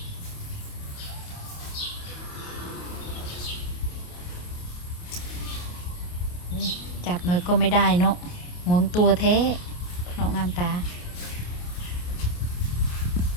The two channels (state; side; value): late; right; 28 ms